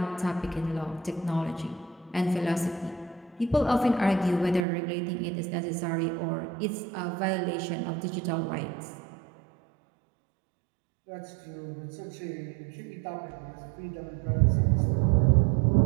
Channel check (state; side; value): drops out; left; at 4.7 s